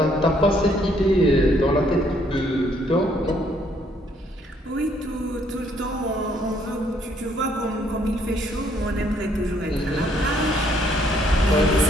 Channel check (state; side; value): normal; both; correlation 0.67